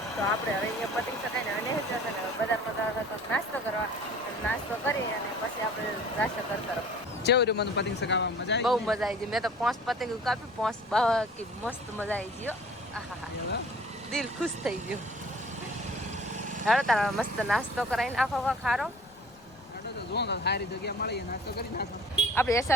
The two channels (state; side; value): noise; left; rumble, 28 dB below the sound